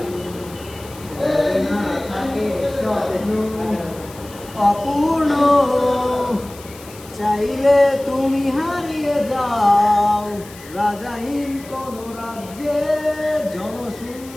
না থাকে স্বপ্ন অপূর্ণ চাইলে তুমি হারিয়ে যাও রাজাহীন কোন রাজ্যে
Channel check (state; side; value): noise; left; hiss, 19 dB below the sound